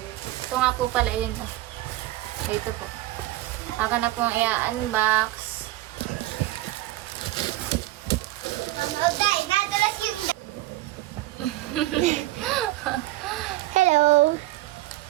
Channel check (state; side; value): quieter; left; 16.9 dB